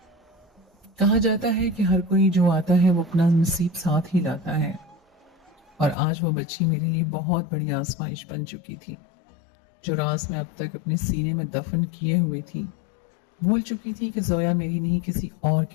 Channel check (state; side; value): drops out; right; at 6.0 s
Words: कहा जाता है कि हर कोई जो आता है वो अपना नसीब साथ ही लाता है, और आज वो बच्ची मेरे लिए बहुत बड़ी आजमाइश बन चुकी थी। जो राज मैं अब तक अपने सीने में दफन किए हुए थी, भूल चुकी थी कि जोया मेरी नहीं किसी और